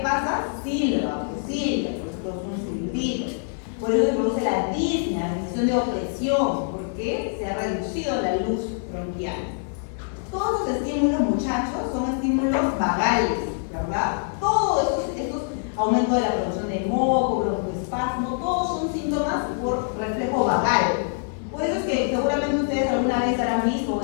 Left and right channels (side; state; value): right; silent; digital silence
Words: Silba, pues silba, pues un silbido. Por eso se produce la disnea, la sensación de opresión, porque se ha reducido la luz bronquial. Todos los estímulos, muchachos, son estímulos vagales, ¿verdad? Todos estos aumento de la producción de moco, broncoespasmo, todos son síntomas por reflejo vagal. Por eso es que seguramente ustedes alguna vez habrán visto